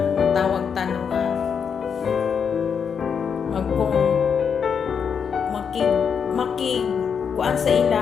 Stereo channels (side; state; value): right; quieter; 6.8 dB